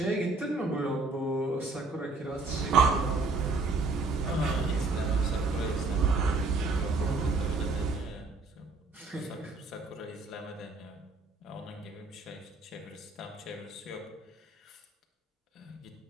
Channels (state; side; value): quieter; left; 3.6 dB